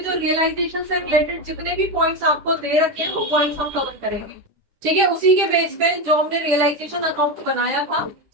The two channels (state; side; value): late; left; 10 ms